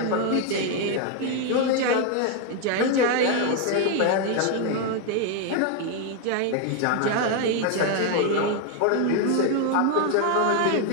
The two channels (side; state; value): both; different; correlation 0.01